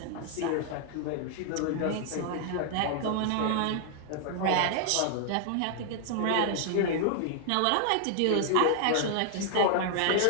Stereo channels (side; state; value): both; different; correlation 0.00